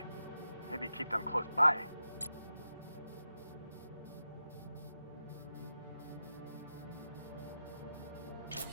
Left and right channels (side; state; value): both; inverted; correlation -0.90